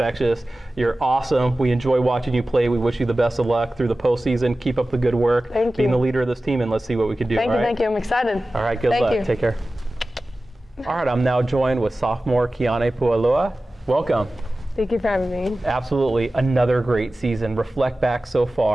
You're awesome. We enjoy watching you play. We wish you the best of luck through the postseason. Keep up the good work. Thank you. Being the leader of this team, and let's see what we can do. Thank you. I'm excited. All right, good luck. Take care. All right, I'm now joined with sophomore Kiane Pualoa. Welcome. Thank you for having me. Absolutely. Another great season. Reflect back so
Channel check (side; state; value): both; normal; correlation 0.96